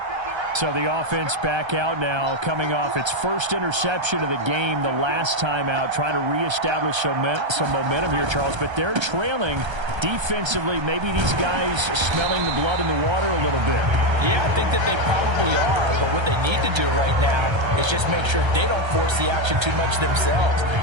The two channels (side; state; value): left; late; 1.3 ms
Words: So the offense back out now, coming off its first interception of the game the last time out, trying to reestablish some momentum here, Charles. But they're trailing defensively. Maybe these guys smelling the blood in the water a little bit. Yeah, I think that they probably are. But what they need to do right now is just make sure they don't force the action too much themselves.